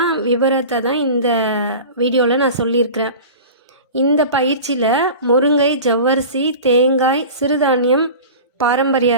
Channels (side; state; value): both; inverted; correlation -0.35